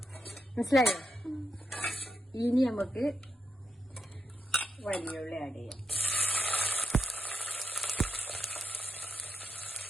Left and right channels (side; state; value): both; normal; correlation 0.85